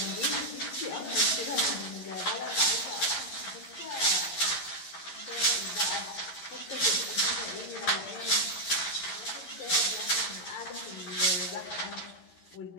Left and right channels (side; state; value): right; late; 11 ms